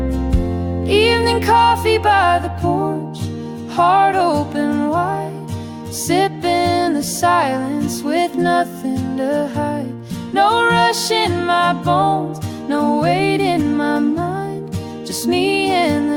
Evening coffee by the porch, heart open wide, sipping the silence with nothing to hide. No rush in my bones, no weight in my mind, just me and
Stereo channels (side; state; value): both; identical; correlation 1.00